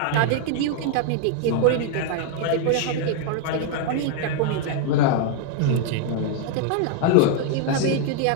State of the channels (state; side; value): different; both; correlation 0.00